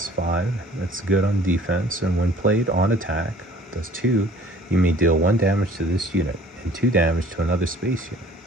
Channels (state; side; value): normal; both; correlation 0.53